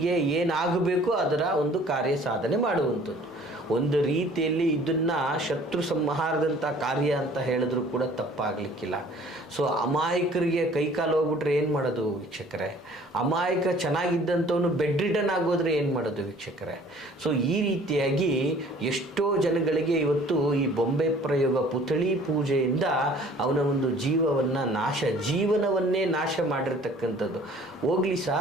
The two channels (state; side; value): normal; both; correlation 0.52